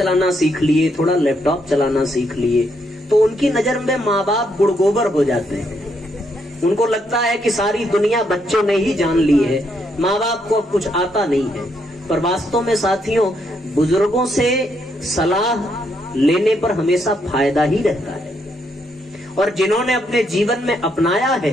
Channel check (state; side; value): normal; both; correlation 0.76